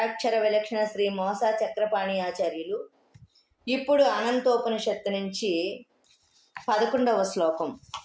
విలక్షణ శ్రీ మోసా చక్రపాణి ఆచార్యులు. ఇప్పుడు అనంతోపనిషత్తు నుంచి 11వ శ్లోకం.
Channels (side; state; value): both; identical; correlation 1.00